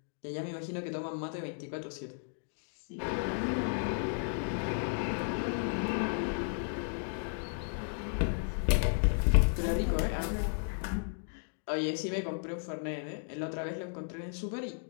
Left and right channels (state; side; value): silent; right; digital silence